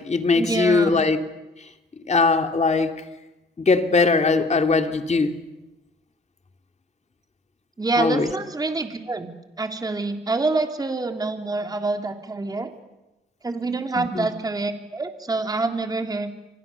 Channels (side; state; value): both; normal; correlation 0.56